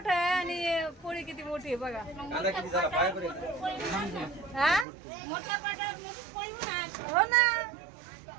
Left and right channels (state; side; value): drops out; left; at 4.9 s